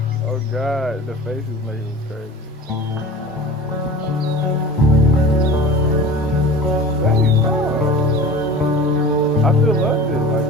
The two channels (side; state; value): both; normal; correlation 0.39